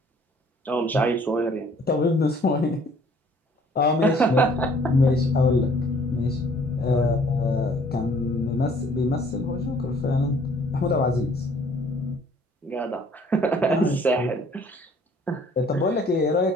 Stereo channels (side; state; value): both; normal; correlation 0.58